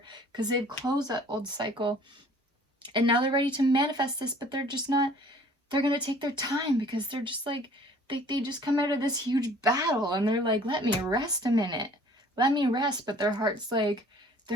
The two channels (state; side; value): normal; both; correlation 0.52